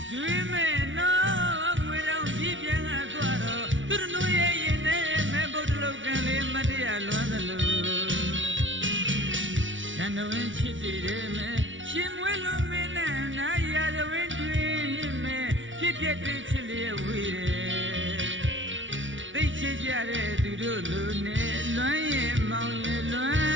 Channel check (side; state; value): left; late; 0.56 ms